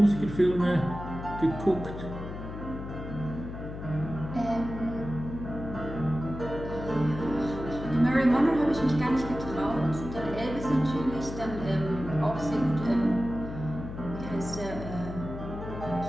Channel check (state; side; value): noise; left; hum, 9 dB below the sound